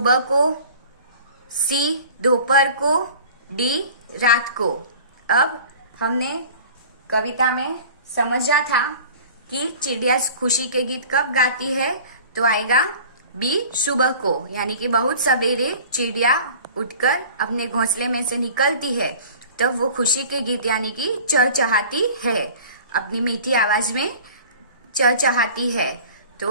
को, सी दोपहर को, डी रात को। अब हमने कविता में समझा था कि चिड़िया खुशी के गीत कब गाती है, तो आएगा बी सुबह को, यानी कि बहुत सवेरे चिड़िया उठकर अपने घोंसले में से निकलती है, तब वो खुशी के गीत यानी कि चहचहाती है, अपनी मीठी आवाज में चहचहाती है।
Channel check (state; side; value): inverted; both; correlation -0.43